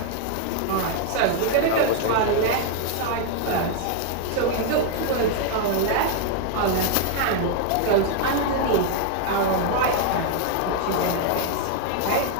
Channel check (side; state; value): both; different; correlation 0.00